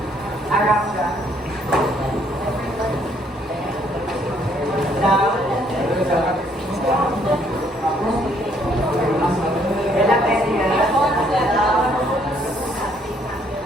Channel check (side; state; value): both; normal; correlation 0.66